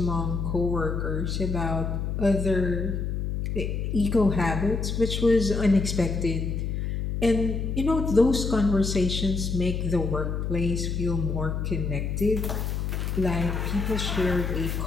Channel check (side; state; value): left; noise; hum, 2 dB below the sound